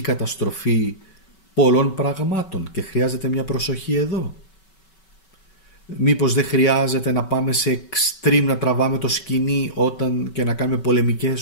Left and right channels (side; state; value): right; late; 5.3 ms